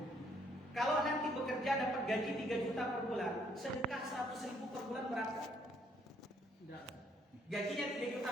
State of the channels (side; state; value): both; normal; correlation 0.68